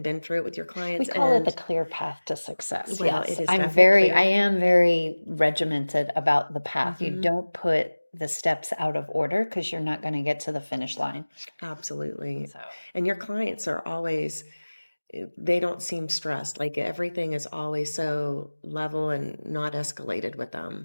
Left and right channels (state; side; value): inverted; both; correlation -1.00